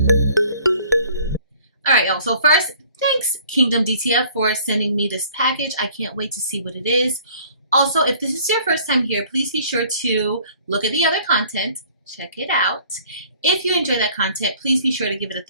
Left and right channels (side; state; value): both; inverted; correlation -0.53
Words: All right, y'all. So first, thanks Kingdom DTF for sending me this package. I can't wait to see what it is. Also, if this is your first time here, please be sure to look at the other content. Check it out. If you enjoy that content, please be sure to give it a